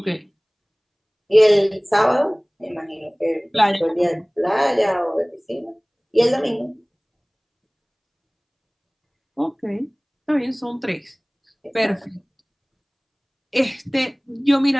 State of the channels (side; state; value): both; identical; correlation 1.00